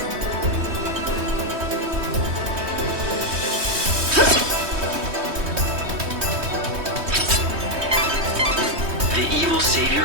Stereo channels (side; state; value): left; late; 3.2 ms